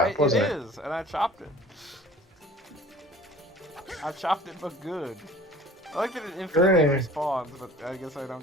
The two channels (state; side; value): normal; both; correlation 0.47